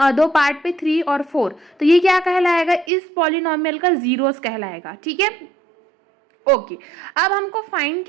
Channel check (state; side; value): drops out; left; at 2.9 s